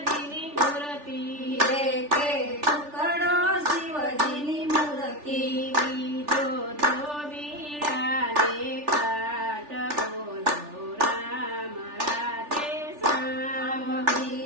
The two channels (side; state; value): left; late; 3.4 ms